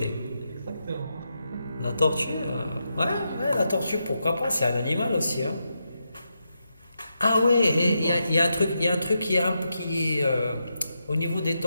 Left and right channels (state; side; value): inverted; both; correlation -0.85